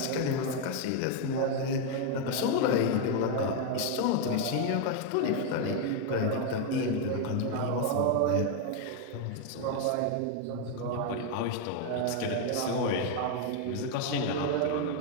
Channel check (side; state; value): both; different; correlation 0.01